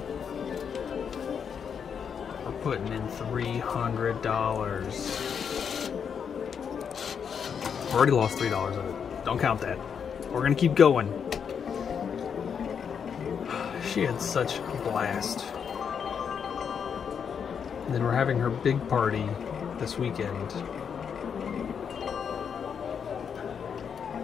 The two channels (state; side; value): quieter; right; 7.1 dB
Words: We're putting in $300. Already lost $3 of it. Don't count that. We're gonna keep going. She had such a blast. And then we're having her big party this weekend.